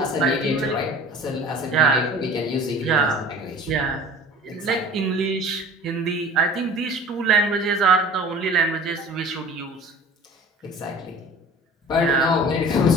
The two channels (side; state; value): both; normal; correlation 0.43